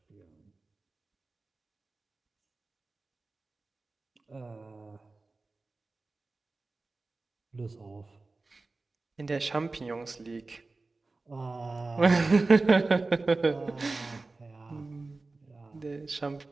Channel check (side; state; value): left; quieter; 3.5 dB